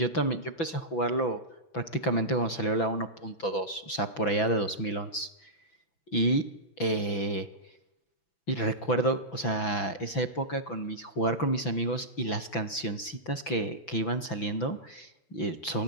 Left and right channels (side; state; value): right; late; 6.0 ms